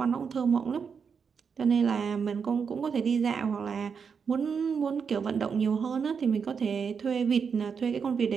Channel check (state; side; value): quieter; left; 6.2 dB